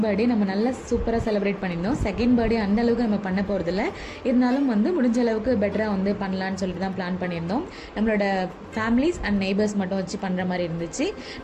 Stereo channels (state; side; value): identical; both; correlation 1.00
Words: பர்த்டே நம்ம நல்லா சூப்பராக செலிப்ரேட் பண்ணியிருந்தோம். செகண்ட் பர்த்டே அந்த அளவுக்கு நம்ம பண்ண போகிறதில்ல, இருந்தாலும் வந்து முடிஞ்ச அளவுக்கு பெட்டராக வந்து பண்ணலான்னு சொல்லிட்டு தான் பிளான் பண்ணியிருந்தோம். நம்மளோட ஃபேமிலிஸ் அண்ட் நெய்பர்ஸ் மட்டும் வச்சு பண்ணுற மாதிரி இருந்துச்சு.